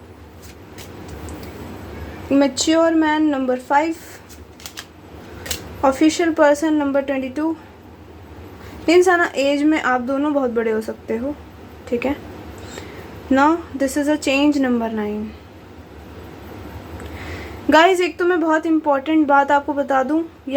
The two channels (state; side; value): identical; both; correlation 1.00